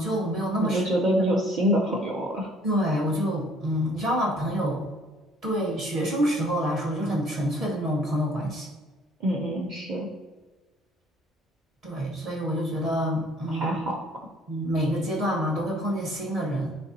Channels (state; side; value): normal; both; correlation 0.58